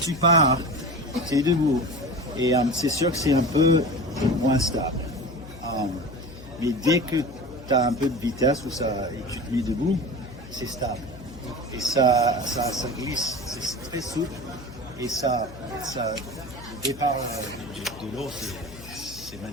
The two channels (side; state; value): left; noise; hum, 16 dB below the sound